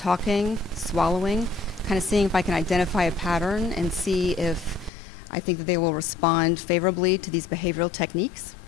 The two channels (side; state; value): right; drops out; at 4.9 s